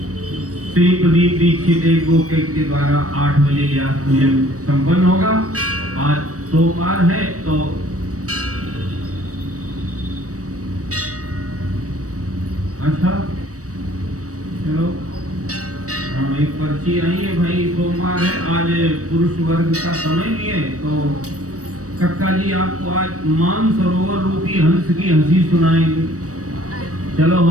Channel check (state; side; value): late; left; 0.66 ms